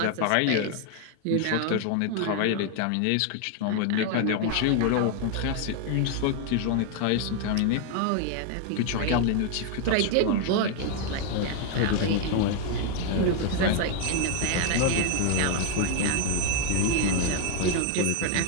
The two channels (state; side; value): different; both; correlation 0.00